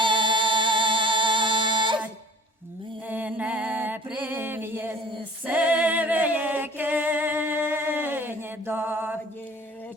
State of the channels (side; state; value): both; normal; correlation 0.49